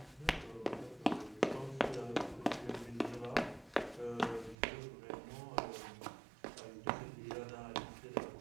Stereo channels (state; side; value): drops out; left; at 4.5 s